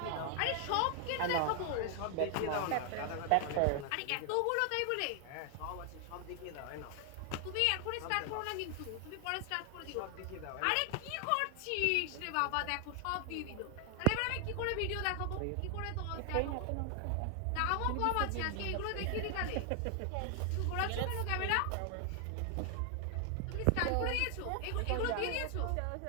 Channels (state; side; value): different; both; correlation 0.00